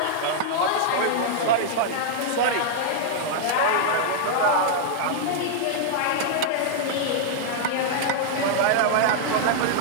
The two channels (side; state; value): both; different; correlation -0.01